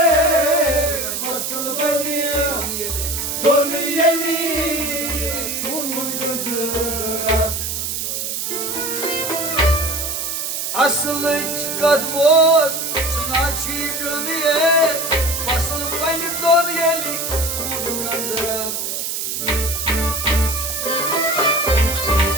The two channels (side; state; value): right; noise; hiss, 3 dB below the sound